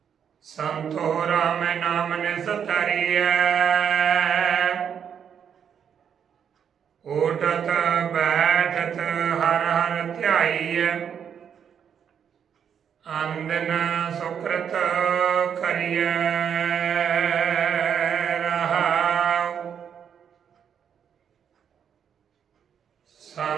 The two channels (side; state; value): left; quieter; 8.0 dB